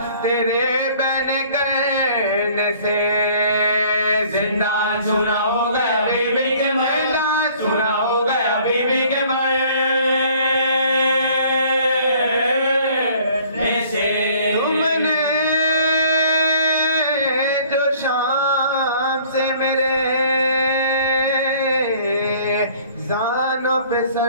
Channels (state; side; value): inverted; both; correlation -0.55